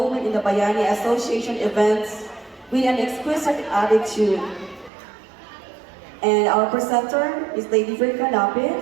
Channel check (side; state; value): left; drops out; at 4.9 s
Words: in the Bayani Association events with an exquisite attitude. And our presenter is Lady Virka